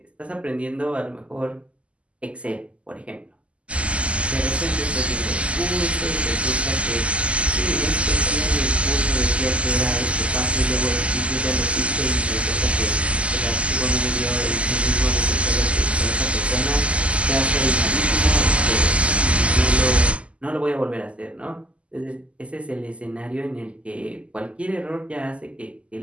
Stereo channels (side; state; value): left; late; 0.059 ms